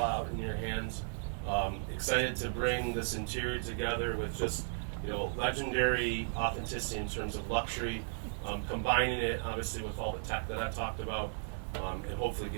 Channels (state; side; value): silent; left; digital silence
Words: in your hands. Excited to bring this interior together with just legendary authenticity in terms of luxury, combining it obviously with all the tech that I've talked about, and hopefully